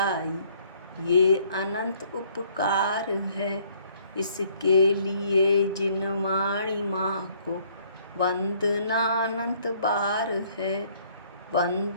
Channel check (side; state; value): both; inverted; correlation -0.62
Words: ये अनंत उपकार है, इसके लिए जिन वाणी माँ को वंदना अनंत बार है,